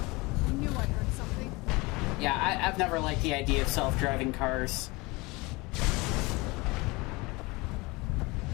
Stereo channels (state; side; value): quieter; right; 24.3 dB